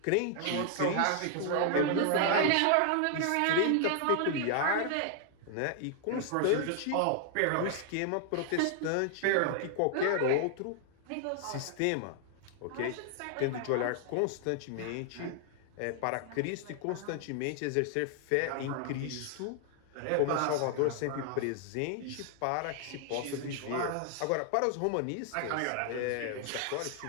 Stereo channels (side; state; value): both; different; correlation 0.00